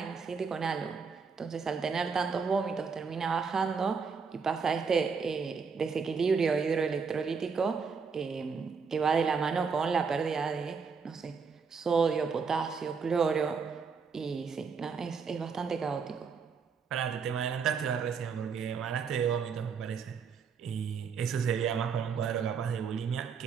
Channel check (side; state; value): left; quieter; 5.7 dB